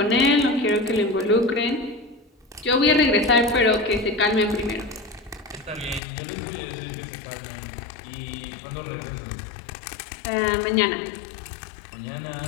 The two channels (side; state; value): right; drops out; at 6.0 s